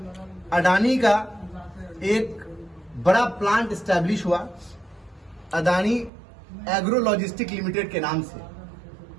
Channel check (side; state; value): left; drops out; at 6.1 s